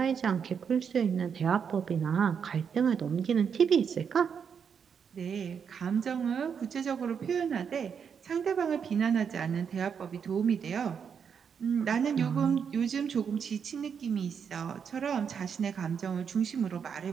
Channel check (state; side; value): quieter; left; 7.0 dB